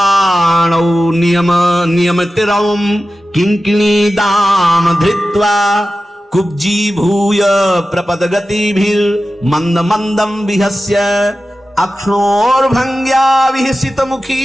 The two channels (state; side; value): normal; both; correlation 0.94